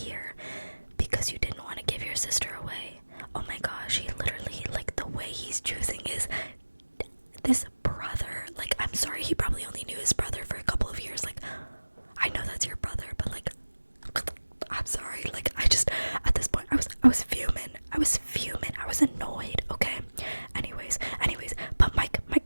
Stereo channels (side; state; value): both; inverted; correlation -1.00